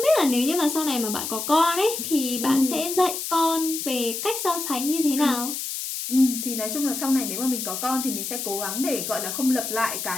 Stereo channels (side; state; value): left; noise; hiss, 5 dB below the sound